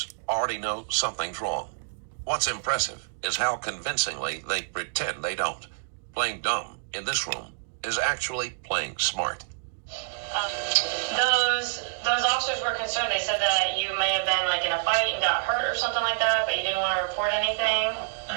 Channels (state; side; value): silent; left; digital silence